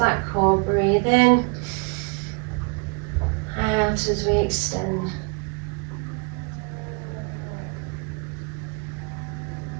core. Breathe in, out as we extend.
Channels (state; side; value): quieter; left; 34.5 dB